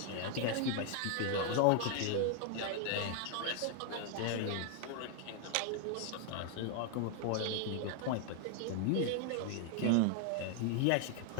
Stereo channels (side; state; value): both; different; correlation 0.00